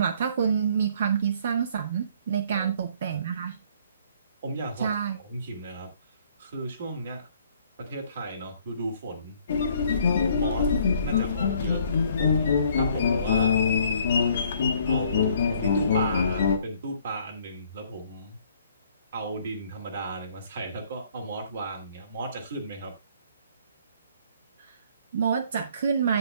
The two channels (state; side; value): inverted; both; correlation -0.61